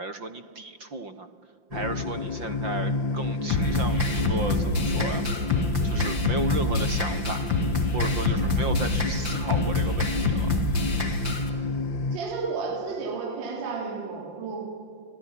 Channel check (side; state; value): left; late; 5.8 ms